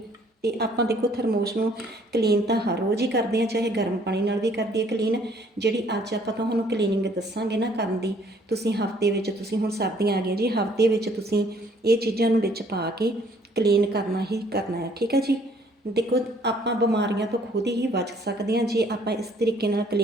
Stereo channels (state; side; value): normal; both; correlation 0.61